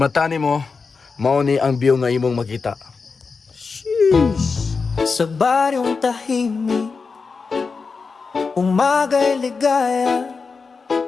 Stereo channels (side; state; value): right; quieter; 4.8 dB